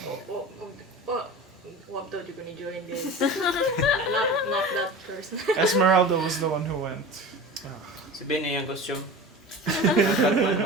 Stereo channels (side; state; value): both; normal; correlation 0.33